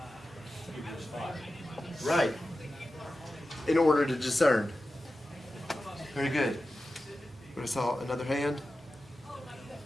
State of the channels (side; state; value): both; normal; correlation 0.93